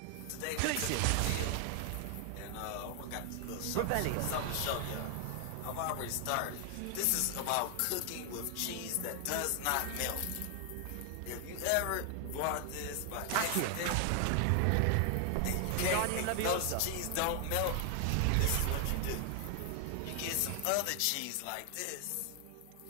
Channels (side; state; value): both; different; correlation 0.00